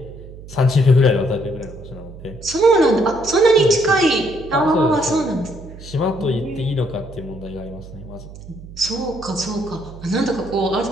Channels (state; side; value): noise; right; hum, 16 dB below the sound